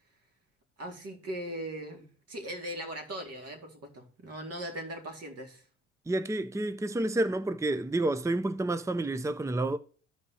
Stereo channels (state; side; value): normal; both; correlation 0.74